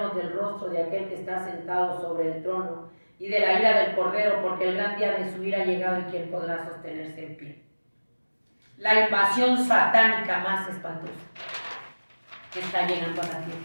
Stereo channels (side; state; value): both; inverted; correlation -1.00